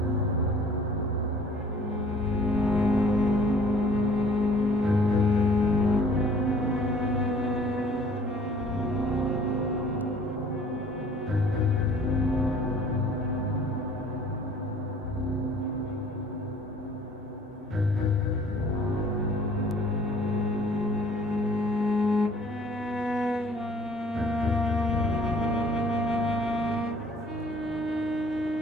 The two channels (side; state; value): both; normal; correlation 0.54